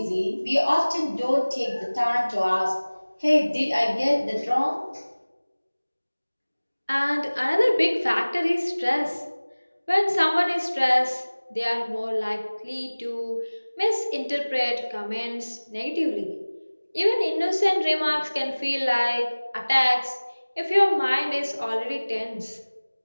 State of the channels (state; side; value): inverted; both; correlation -1.00